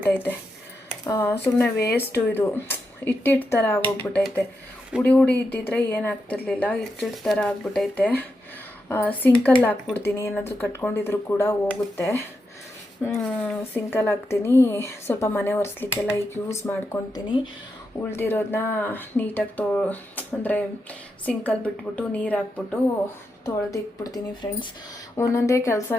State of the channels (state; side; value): normal; both; correlation 0.86